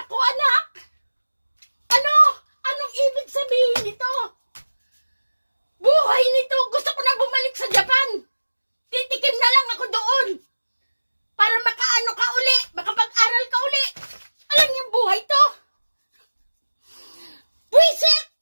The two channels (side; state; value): both; inverted; correlation -1.00